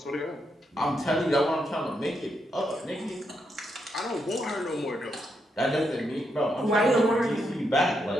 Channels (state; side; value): normal; both; correlation 0.81